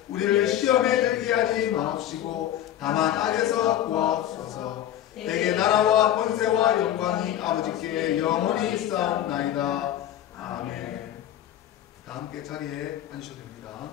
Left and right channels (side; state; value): right; quieter; 11.8 dB